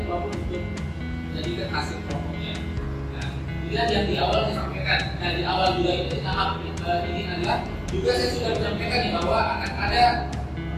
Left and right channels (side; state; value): both; identical; correlation 1.00